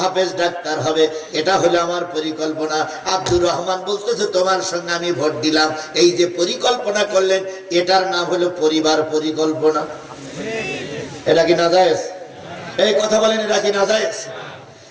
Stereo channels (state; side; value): identical; both; correlation 1.00